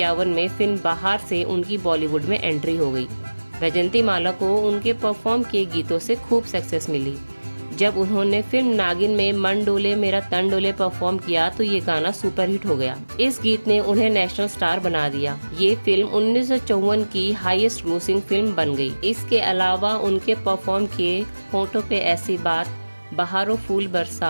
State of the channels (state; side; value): inverted; both; correlation -1.00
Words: में फिल्म बाहर से उनकी बॉलीवुड में एंट्री हो गई। वैजयंती माला को उनके परफॉर्म किए गीतों से खूब सक्सेस मिली। जब उन्होंने फिल्म नागिन में मन डोले मेरा तन डोले परफॉर्म किया तो ये गाना सुपरहिट हो गया। इस गीत ने उन्हें नेशनल स्टार बना दिया। ये फिल्म 1954 की हाईएस्ट ग्रोसिंग फिल्म बन गई। इसके अलावा उनके परफॉर्म किए होठों पे ऐसी बात, बहारों फूल